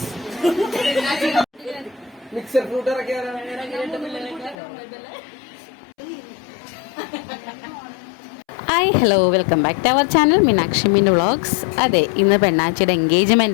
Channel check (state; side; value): drops out; right; at 4.5 s